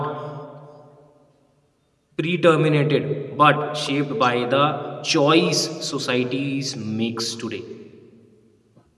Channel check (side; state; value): both; identical; correlation 1.00